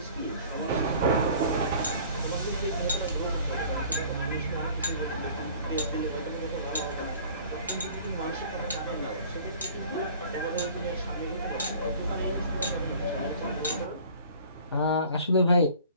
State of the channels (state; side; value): inverted; both; correlation -0.48